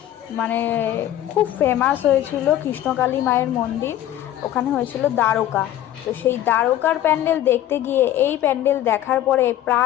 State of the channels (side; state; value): right; quieter; 12.4 dB